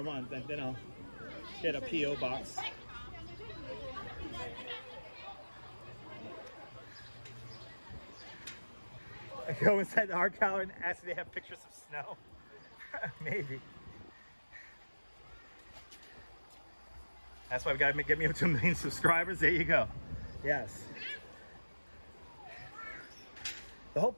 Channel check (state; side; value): inverted; both; correlation -1.00